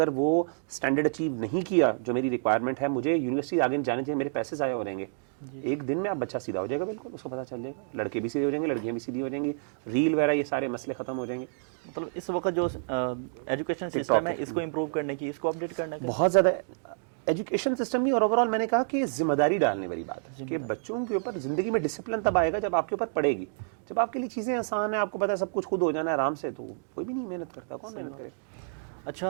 وہ اسٹینڈرڈ اچیو نہیں کیا جو میری ریکوائرمنٹ ہے, مجھے یونیورسٹی آگے جانے چاہیے, میرے پیسے ضائع ہو جائیں گے. ایک دن میں آپ بچہ سیدھا ہو جائے گا, بالکل اس کو پتہ چل جائے گا, لڑکے بھی سیدھے ہو جائیں گے, لڑکیاں بھی سیدھی ہو جائیں گی, ریل وغیرہ یہ سارے مسئلے ختم ہو جائیں گے. مطلب اس وقت جو ایجوکیشن سسٹم ہے اس کو امپروو کرنے کی, اس کو اپڈیٹ کرنے کی بہت زیادہ ایجوکیشن سسٹم بھی, اور اوور آل میں نے کہا کہ ذمہ داری ڈالنے والی بات ہے کہ بچوں کے اوپر زندگی میں ڈسپلن تب آئے گا جب آپ کے اوپر پڑے گی. جب آپ کے لیے چیزیں آسان ہیں, آپ کو پتہ ہے سب کچھ خود ہو جانا ہے آرام سے, تو کوئی بھی نہیں محنت کرتا, کون محنت کرے.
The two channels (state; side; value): silent; left; digital silence